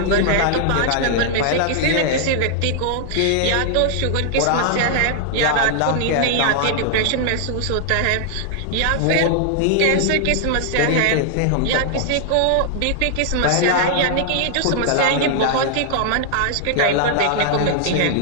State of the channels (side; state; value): both; different; correlation 0.00